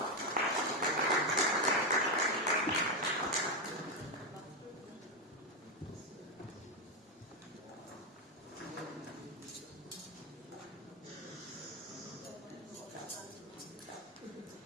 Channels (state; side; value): normal; both; correlation 0.06